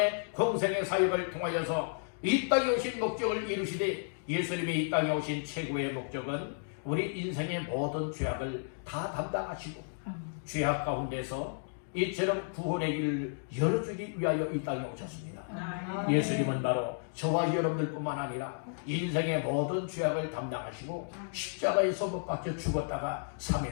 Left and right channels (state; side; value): silent; right; digital silence